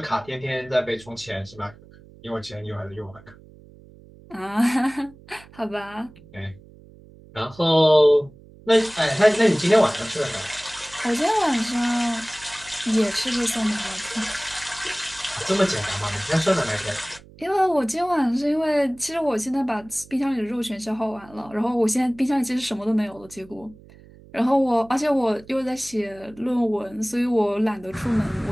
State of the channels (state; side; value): noise; right; hum, 23 dB below the sound